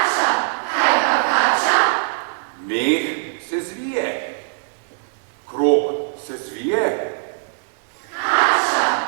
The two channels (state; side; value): silent; left; digital silence